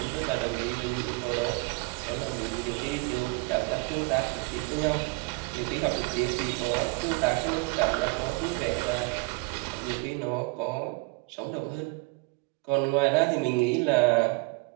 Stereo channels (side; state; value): left; quieter; 27.1 dB